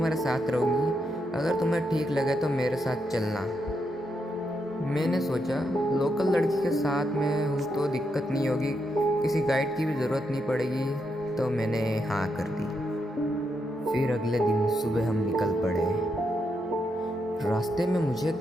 साथ रहूँगी। अगर तुम्हें ठीक लगे तो मेरे साथ चलना। मैंने सोचा लोकल लड़की के साथ में हूँ तो दिक्कत नहीं होगी, किसी गाइड की भी ज़रूरत नहीं पड़ेगी, तो मैंने हाँ कर दी। फिर अगले दिन सुबह हम निकल पड़े। रास्ते में मुझे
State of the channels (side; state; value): both; normal; correlation 0.81